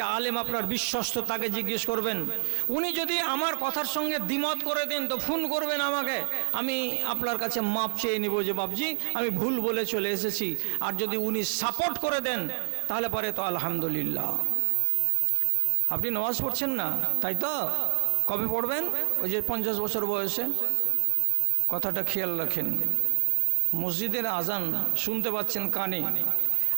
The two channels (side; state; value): left; silent; 60 dB below the other